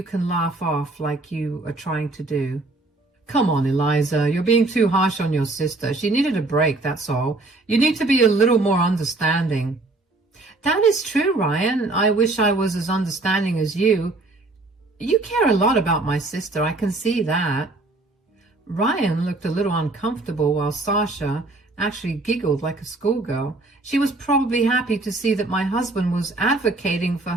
can laugh off like you are trying to do. Come on, Eliza, you're being too harsh on your sister. She needed a break, that's all. You need to be a little more understanding. That is true, Ryan. I wish I was as understanding as you. You care a lot about my sister, I can see that. Ryan looked a little uncomfortable while Sasha actually giggled like a schoolgirl. She was probably happy to see that my husband was advocating for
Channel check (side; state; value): left; quieter; 3.1 dB